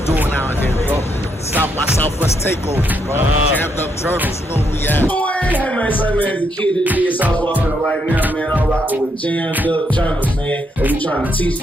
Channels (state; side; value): normal; both; correlation 0.77